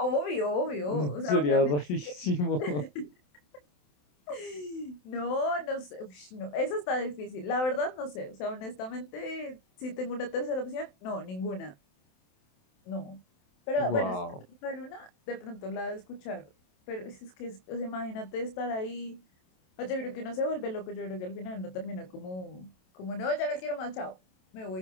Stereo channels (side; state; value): right; late; 27 ms